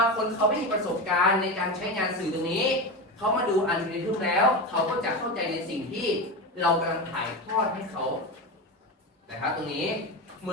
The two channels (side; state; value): both; normal; correlation 0.21